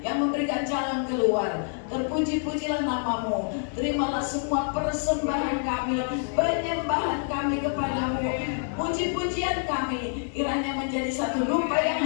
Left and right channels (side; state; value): right; silent; 60 dB below the other